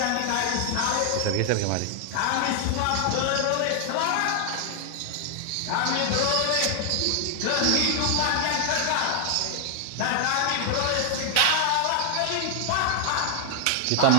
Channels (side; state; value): both; different; correlation 0.00